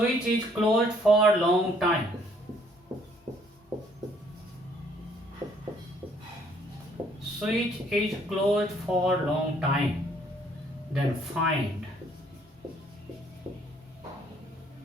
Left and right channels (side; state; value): both; normal; correlation 0.63